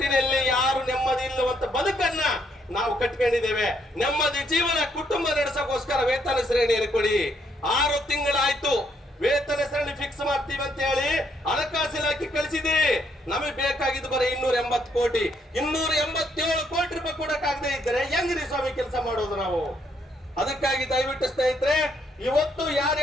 ಯಾರು ನೆಮ್ಮದಿ ಇಲ್ಲವಂತ ಬದುಕನ್ನ ನಾವು ಕಟ್ಕೊಂಡಿದ್ದೇವೆ. ನೆಮ್ಮದಿ ಜೀವನ ಕುಟುಂಬ ನಡೆಸೋಕೋಸ್ಕರ ವೇತನ ಶ್ರೇಣಿಯನ್ನು ಕೊಡಿ. 6 ತಿಂಗಳಾಯ್ತು ವೇತನ ಶ್ರೇಣಿ ಫಿಕ್ಸ್ ಮಾಡ್ತೀವಿ ಅಂತ ಹೇಳಿ ಹಣಕಾಸು ಇಲಾಖೆ ಕಳಿಸಿದ್ದೀರಿ. ನಮಗೆ ಬೇಕಾಗಿದ್ದು ಬರೀ 280 ಕೋಟಿ. 287 ಕೋಟಿ ರೂಪಾಯಿ ಕೊಡಕ್ಕಾಗದೆ ಇದ್ದರೆ ಹೆಂಗ್ರಿ ಸ್ವಾಮಿ ಕೆಲಸ ಮಾಡೋದು ನಾವು? ಅದಕ್ಕಾಗಿ ದಯವಿಟ್ಟು ಸ್ನೇಹಿತರೆ, ಇವತ್ತು ಯಾರು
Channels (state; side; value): normal; both; correlation 0.72